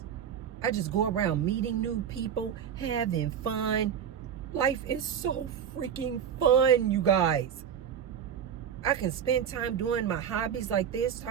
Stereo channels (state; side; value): quieter; left; 8.4 dB